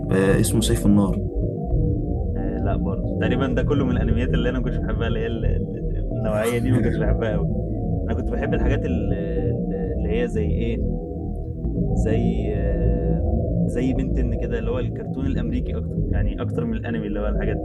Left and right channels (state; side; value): identical; both; correlation 1.00